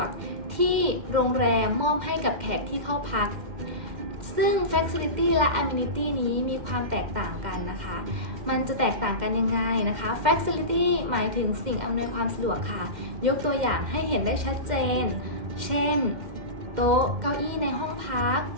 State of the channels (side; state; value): left; late; 2.1 ms